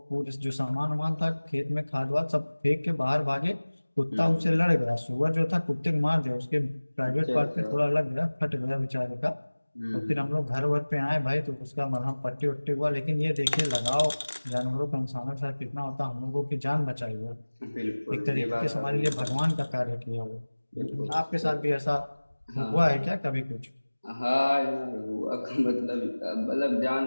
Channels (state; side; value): inverted; both; correlation -1.00